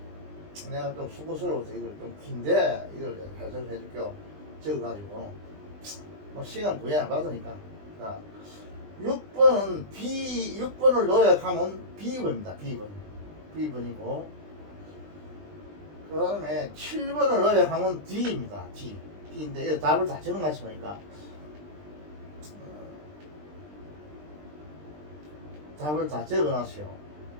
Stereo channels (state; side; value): late; left; 20 ms